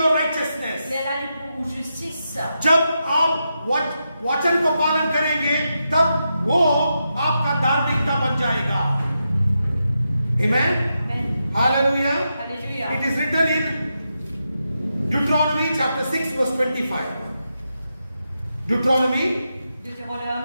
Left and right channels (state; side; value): inverted; both; correlation -0.86